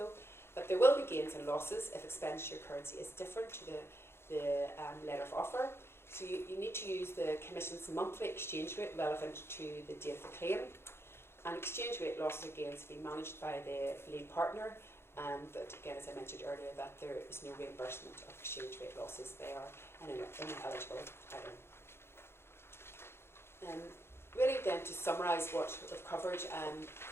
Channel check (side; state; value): right; late; 0.12 ms